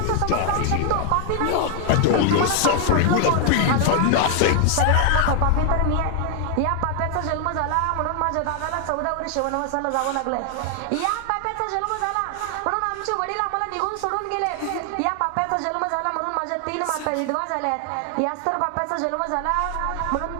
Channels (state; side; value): different; both; correlation 0.00